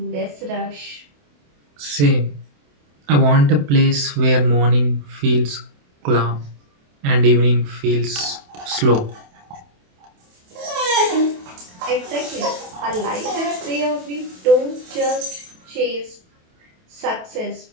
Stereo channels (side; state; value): left; late; 28 ms